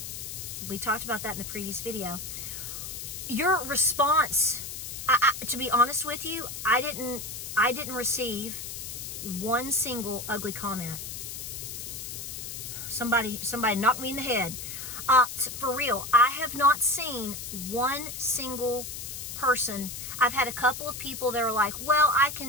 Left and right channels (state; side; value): noise; left; hiss, 8 dB below the sound